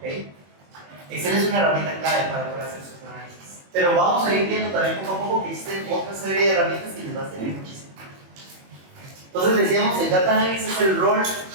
Excel es una herramienta clave para poder hacer sus análisis. Pero vamos a ir viendo también poco a poco que existen otra serie de herramientas que les va a servir muchísimo. Entonces decíamos, el data analysis es el rol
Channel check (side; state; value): left; late; 21 ms